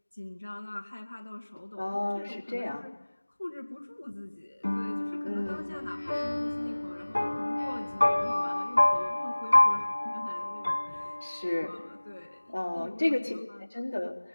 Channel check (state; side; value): inverted; both; correlation -1.00